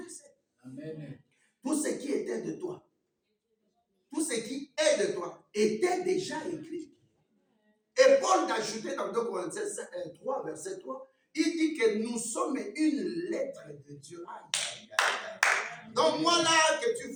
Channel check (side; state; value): both; identical; correlation 1.00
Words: Amen. Tout ce qui était de toi, tout ce qui est de toi, était déjà écrit. Et Paul a ajouté dans 2 Corinthiens 3, verset 3, il dit que nous sommes une lettre de Dieu. Aïe, aïe, aïe. Donc moi là, que tu